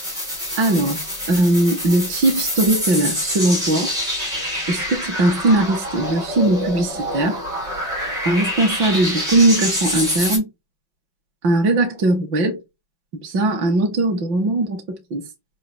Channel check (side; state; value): left; late; 5.3 ms